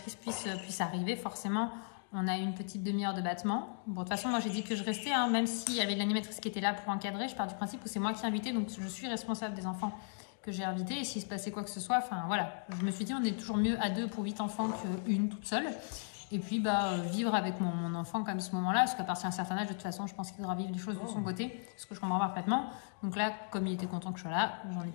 puisse arriver, forcément, on a eu une petite demi-heure de battement. Bon, de toute façon, moi, j'ai dit que je restais, hein, même s'il y avait l'animatrice qui était là pour encadrer. Je pars du principe où c'est moi qui ai invité, donc je suis responsable des enfants que j'ai invités. Et s'il se passait quoi que ce soit, enfin, voilà. Je me suis dit, on est toujours mieux à 2 pour 8 enfants qu'une toute seule. Et puis, vivre avec mon enfant comme ce moment-là, parce qu'à partir d'un certain âge, de toute façon, je pense qu'il devra vivre des choses de son côté, ce que je comprends parfaitement. Donc là, comme il était content que je sois là, j'en ai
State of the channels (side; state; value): right; silent; digital silence